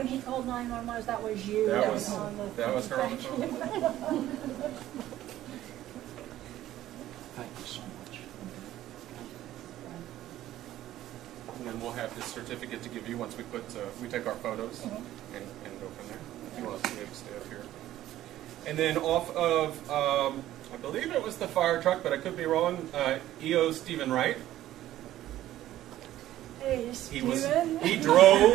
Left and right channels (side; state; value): left; quieter; 13.7 dB